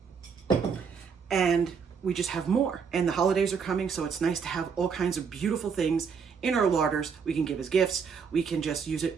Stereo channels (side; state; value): left; quieter; 6.2 dB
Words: and we just have more. And the holidays are coming, so it's nice to have all kinds of beautiful things in our larders. We can give as gifts. We can just use